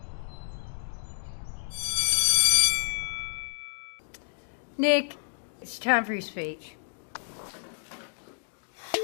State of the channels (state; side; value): silent; right; digital silence